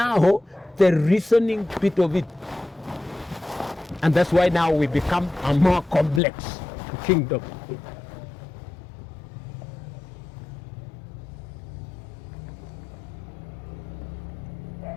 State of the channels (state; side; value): drops out; right; at 6.2 s